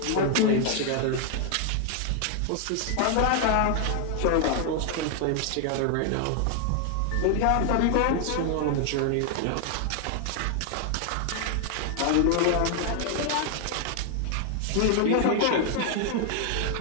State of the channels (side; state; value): both; different; correlation 0.00